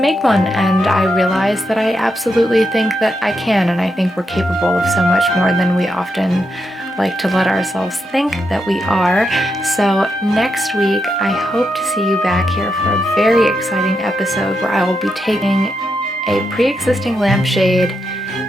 one. And I realized that I absolutely think that I can, and I think we're capable of so much more than we often like to let ourselves think that we are. So next week, I hope to see you back here for a very exciting episode where I will be taking a pre-existing lampshade,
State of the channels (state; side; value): normal; both; correlation 0.83